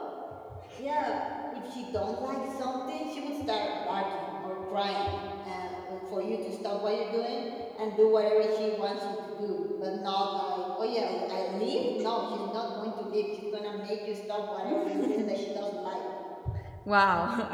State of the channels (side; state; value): both; identical; correlation 1.00